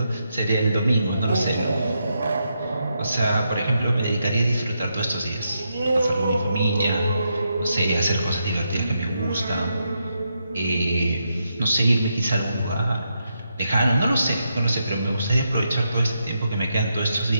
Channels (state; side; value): inverted; both; correlation -0.83